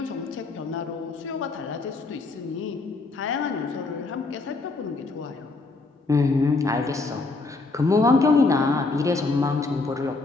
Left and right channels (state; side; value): quieter; right; 3.7 dB